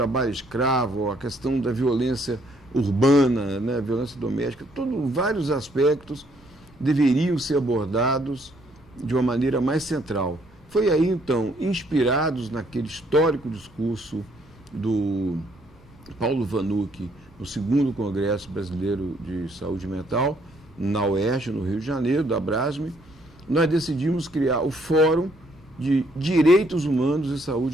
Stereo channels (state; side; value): noise; right; rumble, 28 dB below the sound